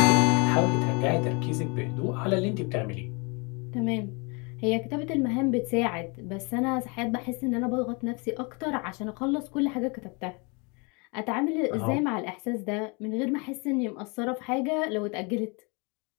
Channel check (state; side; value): quieter; right; 31.1 dB